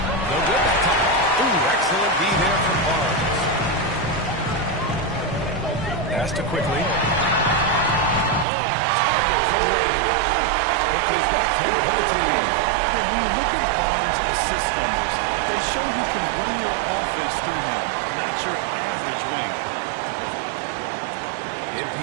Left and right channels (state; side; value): drops out; left; at 8.5 s